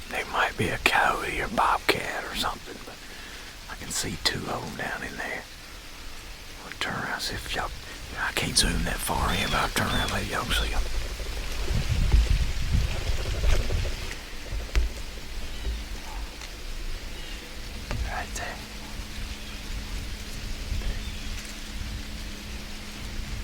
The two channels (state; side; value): identical; both; correlation 1.00